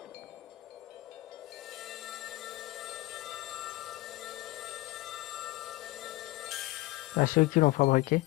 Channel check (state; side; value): quieter; right; 19.9 dB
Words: À ceux qui l'ont fabriqué.